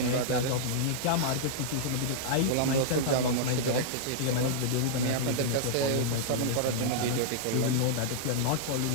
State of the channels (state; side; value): different; both; correlation -0.02